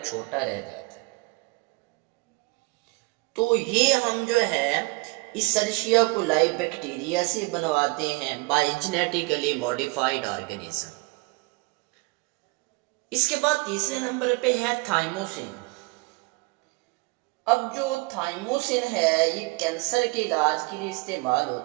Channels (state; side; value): quieter; left; 26.6 dB